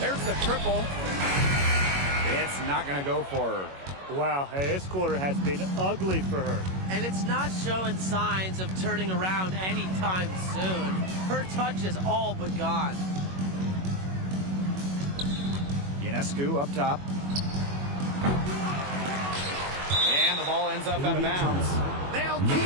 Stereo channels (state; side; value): late; left; 21 ms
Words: the triple. It's not going to go for her. Wow, hey, this quarter has been ugly for her. And it's not showing signs of turning around anytime soon. Her touch is all but gone. Ionescu up top. And the ball ends up out of bounds. They'll